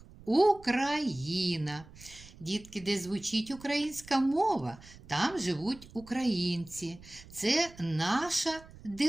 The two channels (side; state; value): right; noise; rumble, 20 dB below the sound